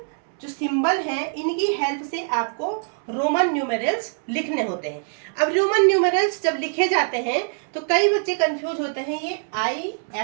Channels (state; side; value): silent; left; 63 dB below the other